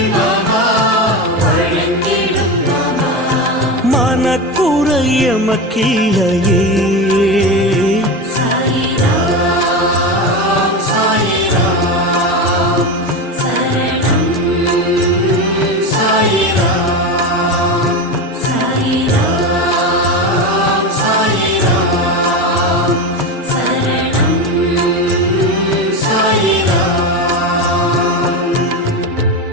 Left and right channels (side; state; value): both; normal; correlation 0.20